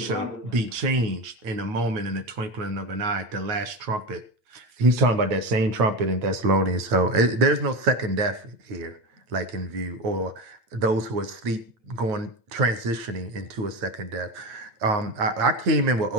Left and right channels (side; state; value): left; late; 8.8 ms